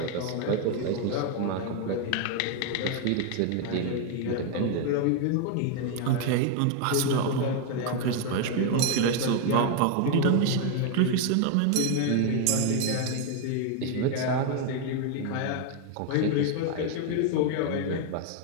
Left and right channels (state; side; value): different; both; correlation 0.01